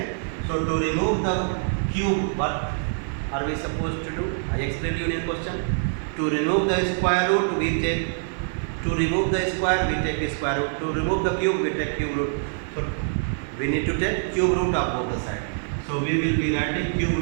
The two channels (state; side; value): silent; left; 62 dB below the other